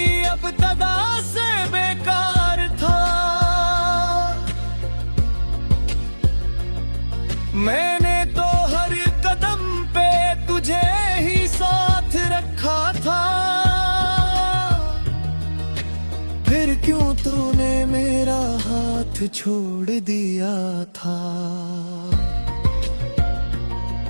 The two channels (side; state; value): both; inverted; correlation -1.00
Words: अब तदा से बेकार था। मैंने तो हर कदम पे तुझे ही साथ रखा था, फिर क्यों तूने मेरा हाथ छोड़ दिया था।